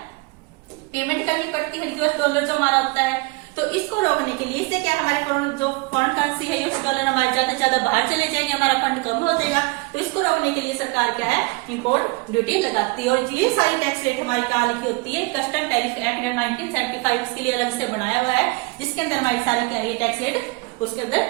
पेमेंट करनी पड़ती है, यूएस डॉलर जो हमारा होता है। तो इसको रोकने के लिए, इससे क्या हमारे जो फॉरेन करेंसी है यूएस डॉलर हमारे ज्यादा से ज्यादा बाहर चले जाएंगे, हमारा फंड कम हो जाएगा। तो इसको रोकने के लिए सरकार क्या है, इंपोर्ट ड्यूटी लगाती है। और ये सारी टैक्स रेट हमारी कहाँ लिखी होती है, कस्टम टैरिफ एक्ट 1975 उसके लिए अलग से बनाया हुआ है, जिसके अंदर हमारी सारी क्या है टैक्स रेट उसके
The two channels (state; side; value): quieter; left; 26.2 dB